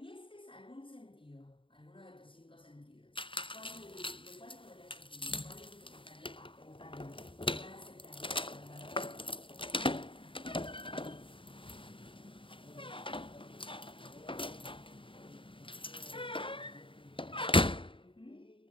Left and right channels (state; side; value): late; right; 0.25 ms